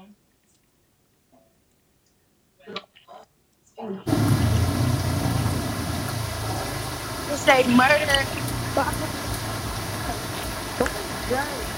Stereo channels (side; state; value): both; identical; correlation 1.00